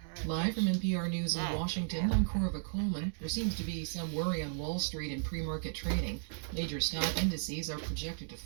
All right. Live from NPR News in Washington, I'm Corva Coleman. There seems to be some worry on Wall Street in pre-market trading. Major stock indices are projected to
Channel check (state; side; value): silent; left; digital silence